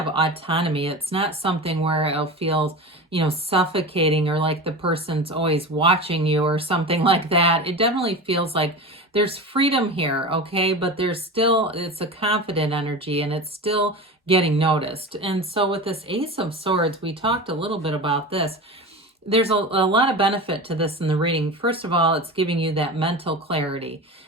autonomy. It's not something where it'll feel, you know, suffocating or like the person's always watching you or something like that. It definitely feels like there's freedom here, okay? But there's still, it's a confident energy and it's still getting noticed. And so with this Ace of Swords, we talked a little bit about this. There's a lot of benefit to this in the reading. First of all, it's giving you that mental clarity.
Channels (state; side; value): normal; both; correlation 0.28